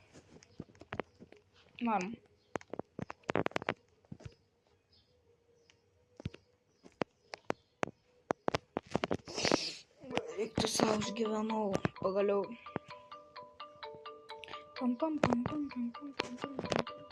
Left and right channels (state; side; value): identical; both; correlation 1.00